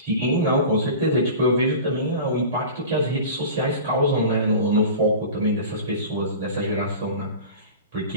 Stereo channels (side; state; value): both; inverted; correlation -0.35